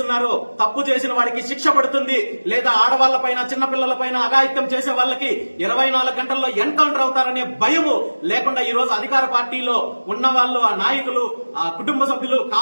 తప్పు చేసిన వాడికి శిక్ష పడుతుంది, లేదా ఆడవాళ్ల పైన, చిన్నపిల్లల పైన అఘాయిత్యం చేసే వాళ్ళకి 24 గంటల్లో ఎన్కౌంటర్ అవుతారనే భయము లేకుండా ఈ రోజు అధికార పార్టీలో ఉన్న వాళ్ళు, ఆ నాయకులు, ఆ కుటుంబ సభ్యులు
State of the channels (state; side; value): inverted; both; correlation -1.00